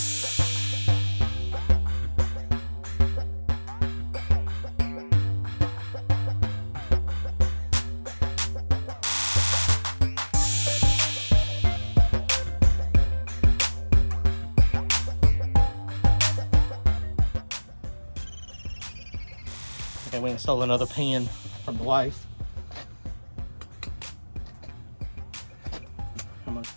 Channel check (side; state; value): both; inverted; correlation -1.00